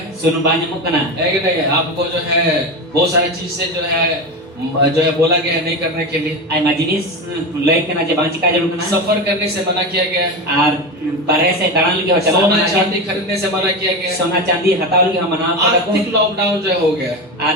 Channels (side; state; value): both; normal; correlation 0.21